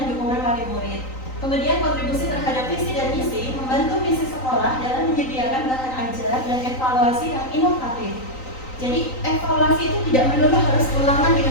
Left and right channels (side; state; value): right; late; 3.9 ms